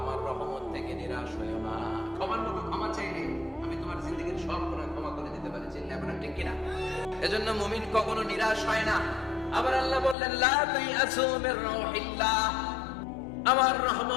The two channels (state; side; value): drops out; right; at 10.2 s